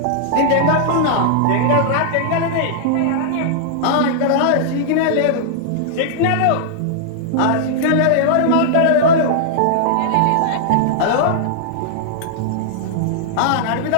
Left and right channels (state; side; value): different; both; correlation -0.01